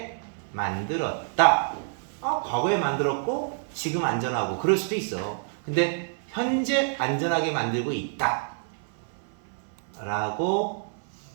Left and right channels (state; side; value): silent; left; 56 dB below the other